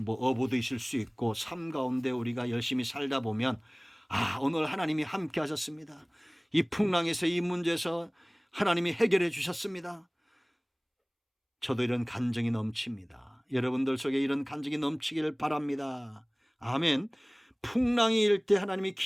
어부도 있을 수 있고 삶 가운데 우리가 열심히 살다 보면 오늘 하나님이 함께 하셨습니다. 이 풍랑에서 이 문제에서 하나님이 해결해 주셨습니다. 저도 이런 간증이 넘칩니다. 여러분들 속에 이런 간증이 넘치기를 바랍니다. 아멘. 풍랑이 일 때 하나님이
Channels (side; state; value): both; identical; correlation 1.00